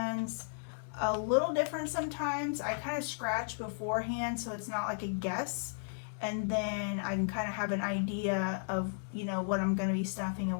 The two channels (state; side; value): silent; right; digital silence